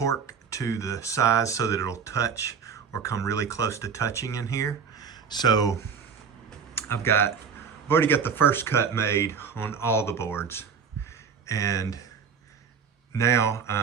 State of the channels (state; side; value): quieter; left; 6.4 dB